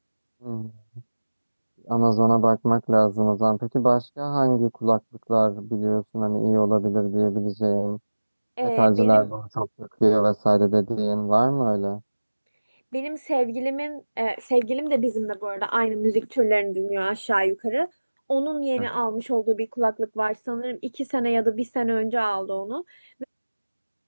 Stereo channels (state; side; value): inverted; both; correlation -1.00